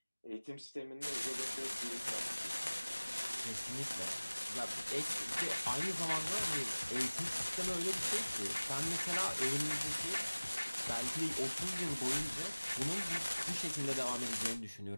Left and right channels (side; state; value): both; inverted; correlation -1.00